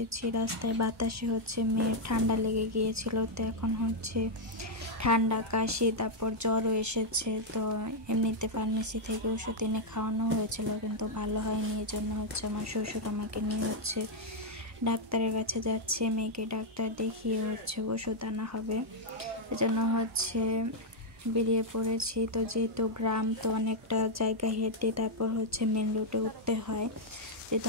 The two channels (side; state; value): both; normal; correlation -0.01